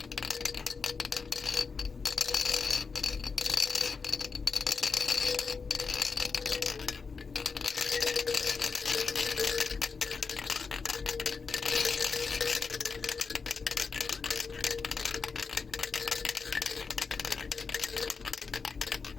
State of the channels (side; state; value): right; quieter; 5.0 dB